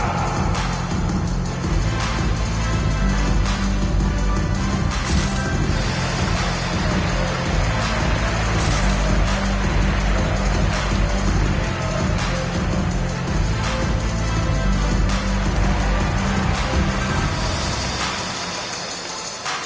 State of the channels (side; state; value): both; identical; correlation 1.00